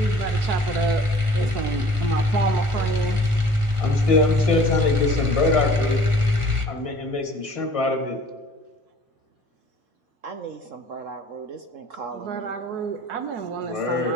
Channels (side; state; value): left; late; 1.4 ms